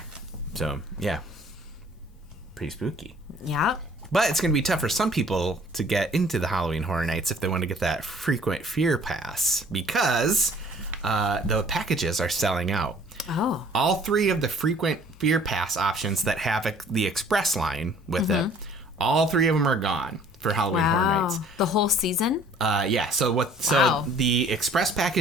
So, yeah. Pretty spooky. Yeah. But it's going to be tough for some people to get into the Halloween Horror Nights if they want to get that frequent fear pass, because the packages are selling out. Oh. All three of the frequent fear pass options that have the express line with it, all three of them are gone for Halloween Horror Nights. The whole season? Yeah. So the express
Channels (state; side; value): normal; both; correlation 0.54